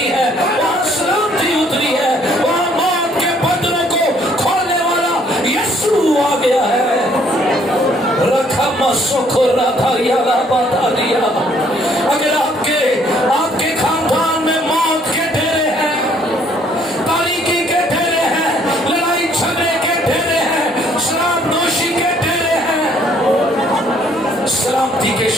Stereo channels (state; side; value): normal; both; correlation 0.63